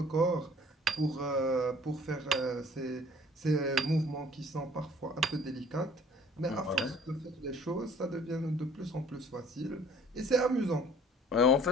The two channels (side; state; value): both; normal; correlation 0.54